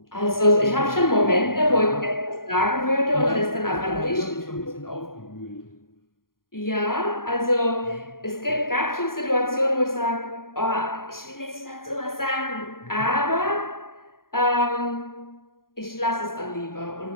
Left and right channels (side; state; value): right; late; 0.91 ms